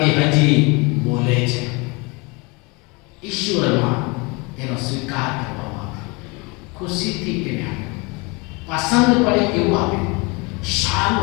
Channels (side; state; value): right; quieter; 27.9 dB